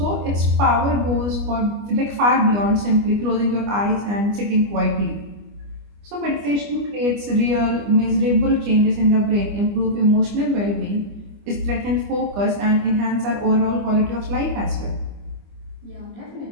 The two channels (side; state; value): left; late; 25 ms